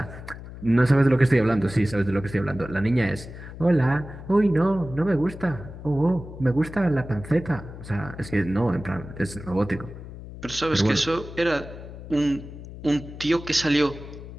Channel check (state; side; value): noise; left; hum, 13 dB below the sound